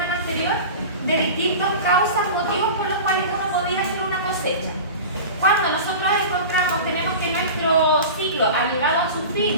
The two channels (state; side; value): inverted; both; correlation -0.33